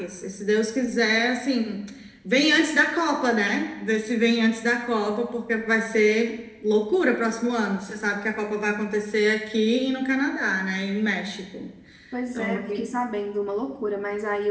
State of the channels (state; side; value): identical; both; correlation 1.00